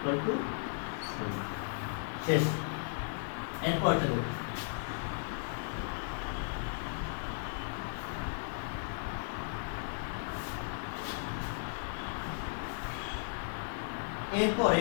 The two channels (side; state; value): right; silent; digital silence